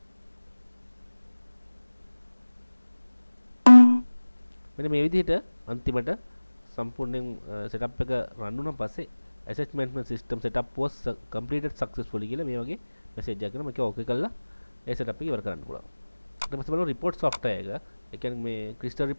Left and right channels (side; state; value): both; inverted; correlation -1.00